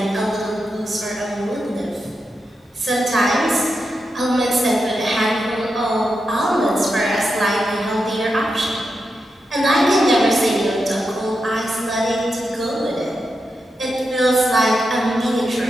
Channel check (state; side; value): normal; both; correlation 0.87